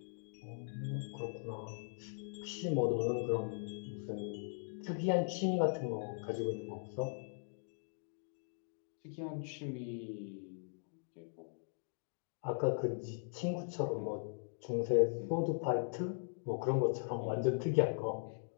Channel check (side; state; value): right; silent; digital silence